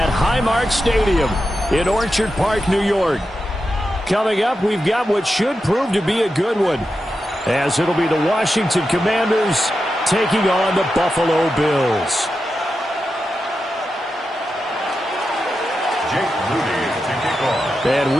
Highmark Stadium in Orchard Park, New York. Coming up, we've got what should prove to be a good one, as it'll be the Washington Commanders taking on the Buffalo Bills. Jake Moody to kick off. And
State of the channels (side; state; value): both; normal; correlation 0.89